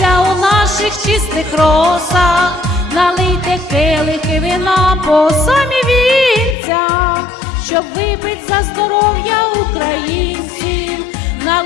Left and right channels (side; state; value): right; drops out; at 6.6 s